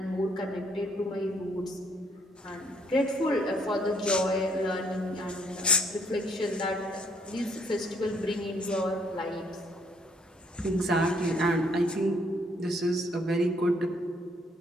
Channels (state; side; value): normal; both; correlation 0.67